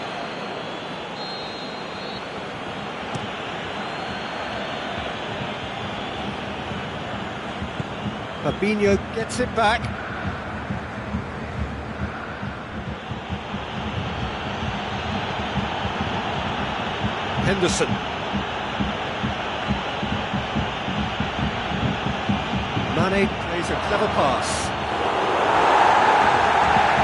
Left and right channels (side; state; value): both; identical; correlation 1.00